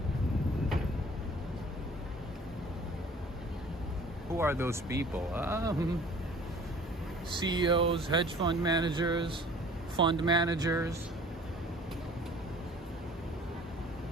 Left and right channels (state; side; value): normal; both; correlation 0.50